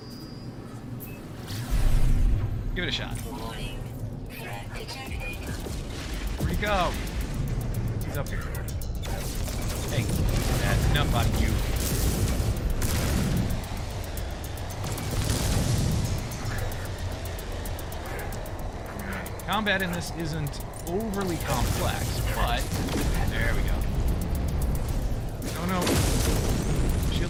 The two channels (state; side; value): identical; both; correlation 1.00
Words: Give it a shot. Warning. Threat detected. Where'd he go? He's up here. Hey, that's enough on you. Combat in this isn't overly complex, but there we go. Oh no.